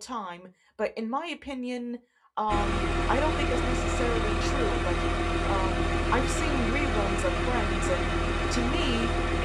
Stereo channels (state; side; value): identical; both; correlation 1.00